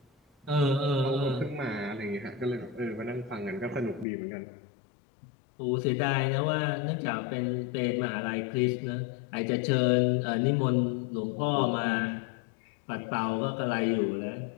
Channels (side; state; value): right; drops out; at 4.0 s